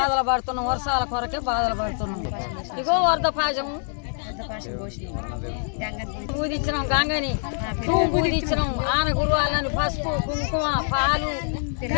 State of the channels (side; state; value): right; silent; 59 dB below the other